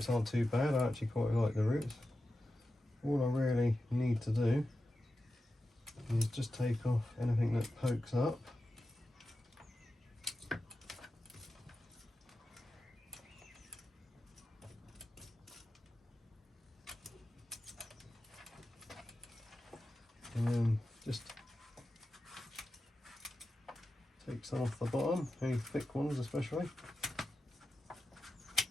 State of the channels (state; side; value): normal; both; correlation 0.92